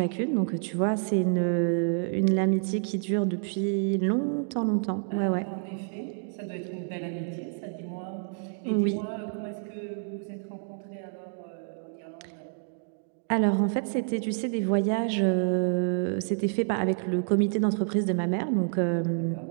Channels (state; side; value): silent; left; 59 dB below the other